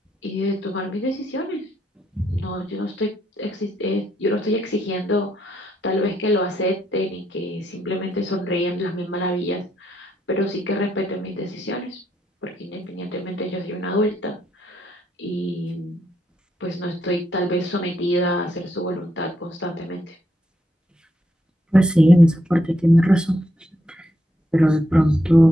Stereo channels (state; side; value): normal; both; correlation 0.77